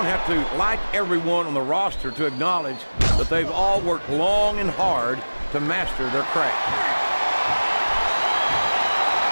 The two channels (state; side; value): inverted; both; correlation -1.00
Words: have to like everyone on the roster to acknowledge that they've all worked long and hard to master their craft.